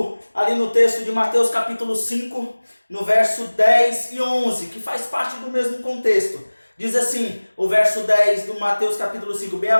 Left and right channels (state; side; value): inverted; both; correlation -1.00